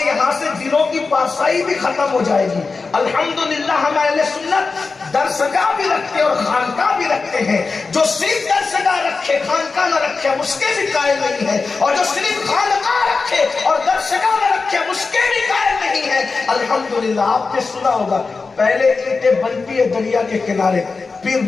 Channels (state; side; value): quieter; right; 4.3 dB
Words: یہاں سے دلوں کی پارسائی بھی ختم ہو جائے گی۔ الحمدللہ ہم اہل سنت درسگاہ بھی رکھتے اور خانقاہ بھی رکھتے ہیں۔ جو صرف درسگاہ رکھے خانقاہ نہ رکھے ہم اس کے بھی قائل نہیں ہے، اور جو صرف خانقاہ رکھے اور درسگاہ نہ رکھے ہم اس کے بھی قائل نہیں ہے۔ الحمدللہ آپ نے سنا ہوگا پہلے اینٹیں بنتی ہے دریا کے کنارے، پھر